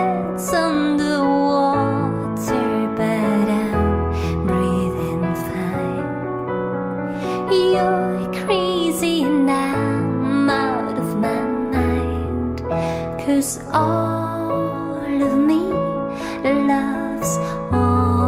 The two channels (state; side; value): identical; both; correlation 1.00